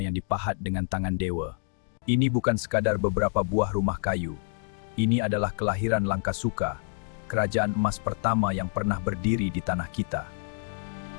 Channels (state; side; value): silent; right; digital silence